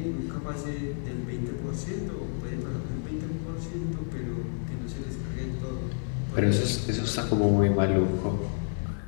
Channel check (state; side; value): silent; right; digital silence